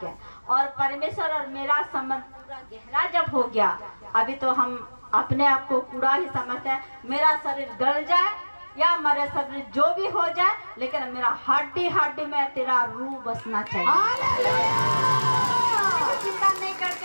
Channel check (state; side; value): inverted; both; correlation -1.00